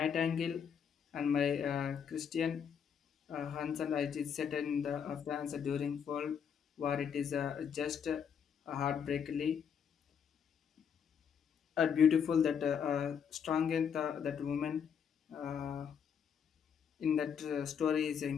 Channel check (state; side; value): quieter; right; 7.5 dB